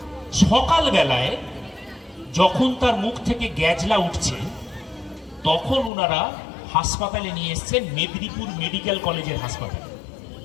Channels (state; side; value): drops out; right; at 5.9 s